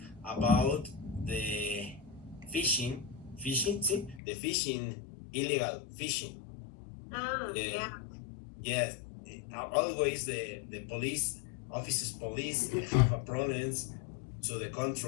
about the fishing. See, the fishing, illegal fishing. Yeah. Yes, always the police police have a problems to the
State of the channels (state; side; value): drops out; right; at 4.2 s